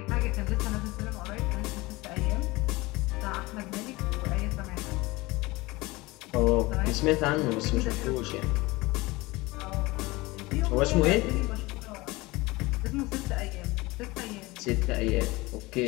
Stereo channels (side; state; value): right; quieter; 21.7 dB